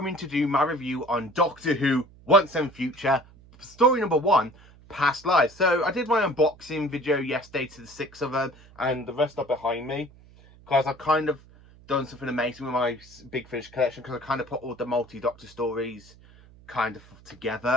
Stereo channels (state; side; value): noise; right; hum, 24 dB below the sound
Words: to do my review on Doctor Who Once and Future, story number 1, Past Lives. So, I did my unboxing video yesterday to the 6 of them, and the rest are behind me, because I've kind of done something amazing with my Big Finish collection, because I kind of put all the multi-Doctor stories kind of